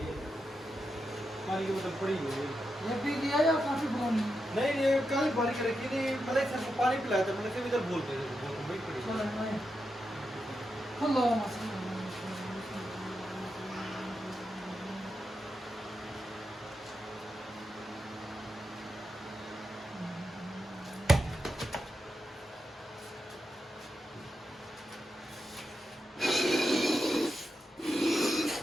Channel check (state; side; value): normal; both; correlation 0.87